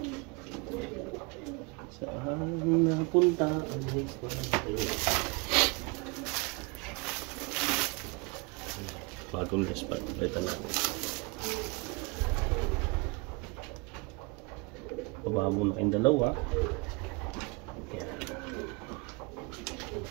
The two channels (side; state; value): left; quieter; 28.4 dB